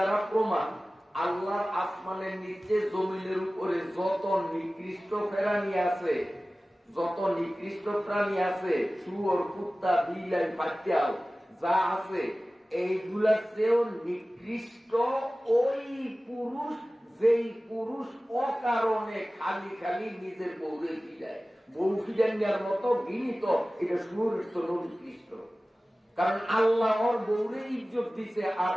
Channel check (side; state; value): both; normal; correlation 0.97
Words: প্রমাণ, আল্লাহর আসমানের নিচে জমিনের উপরে যত নিকৃষ্ট প্রাণী আছে, যত নিকৃষ্ট প্রাণী আছে, শুয়োর, কুত্তা, বিলাই, পাতিয়াল যা আছে, এইগুলার চেয়েও নিকৃষ্ট ওই পুরুষ, যেই পুরুষ অকারণে খালি খালি নিজের বউরে ফিরায়। বউ ফিরানোর মতো গিনিত, এটা শুয়োরের তো নিকৃষ্ট। কারণ আল্লাহ ওর বউরে ইজ্জত দিছে আর